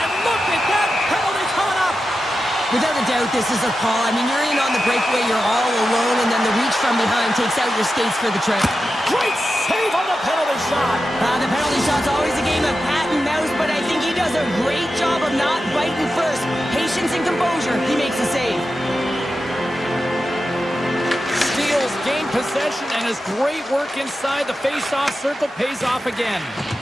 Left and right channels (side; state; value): both; normal; correlation 0.91